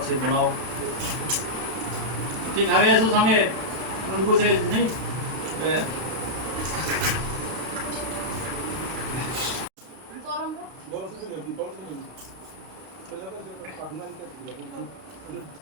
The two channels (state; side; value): late; left; 32 ms